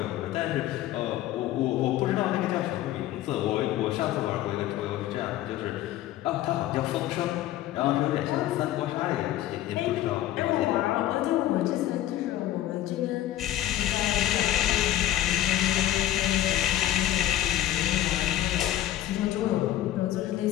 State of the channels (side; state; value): right; quieter; 13.6 dB